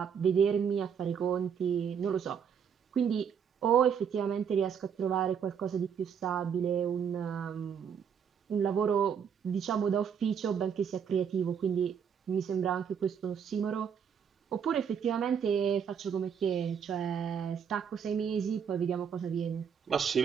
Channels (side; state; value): left; quieter; 7.4 dB